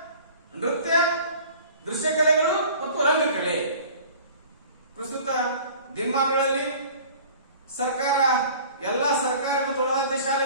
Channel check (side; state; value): both; inverted; correlation -0.45